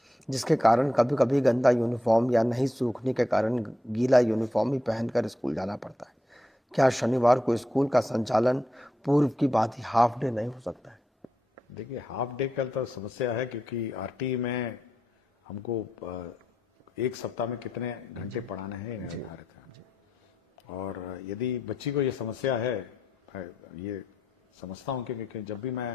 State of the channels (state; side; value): normal; both; correlation 0.84